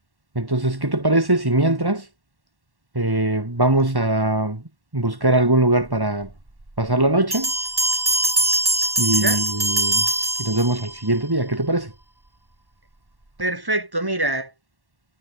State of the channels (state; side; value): late; left; 1.1 ms